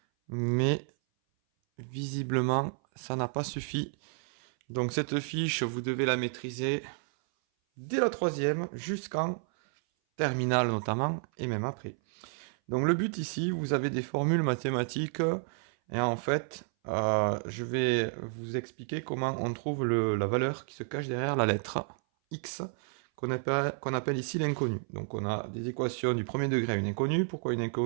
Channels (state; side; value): silent; left; 57 dB below the other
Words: mais visiblement ça n'a pas suffi. Donc cette fiche, vous devez la maîtriser dès la troisième jusqu'en terminale notamment, et même après. Donc le but ici, vous avez des formules mathématiques, et en fait, je vais vous expliquer comment on trouve la valeur qui se cache derrière la lettre x, qu'on appelle ici l'inconnu. Donc on a des équations du premier degré à une inconnue. Pourquoi une